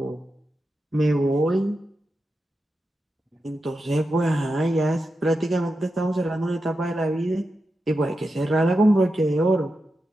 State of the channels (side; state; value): both; normal; correlation 0.89